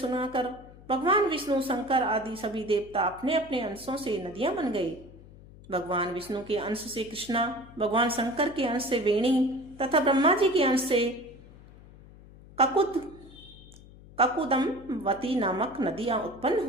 भगवान विष्णु, शंकर आदि सभी देवता अपने अपने अंशों से नदियां बन गए। भगवान विष्णु के अंश से कृष्णा, भगवान शंकर के अंश से वेणी तथा ब्रह्मा जी के अंश से ककुदमवती नामक नदियां उत्पन्न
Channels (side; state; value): left; noise; hum, 20 dB below the sound